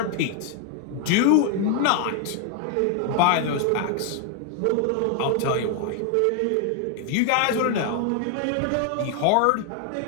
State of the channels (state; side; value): different; both; correlation 0.01